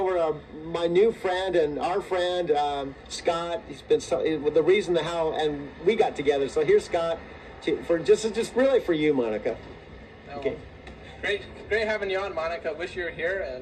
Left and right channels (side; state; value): both; identical; correlation 1.00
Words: to my new friend and our friend, Scott. He's been the reason how and we got together. So here's Scott for just really for you, Monica. Oh, Okay. Great having you on, Monica. Wish you were